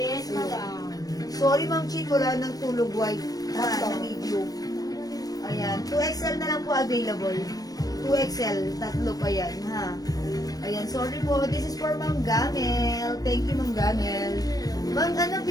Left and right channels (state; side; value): late; right; 0.18 ms